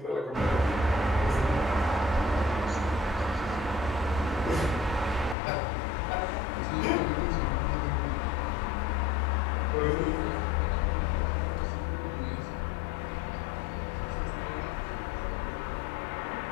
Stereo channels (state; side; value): drops out; right; at 5.4 s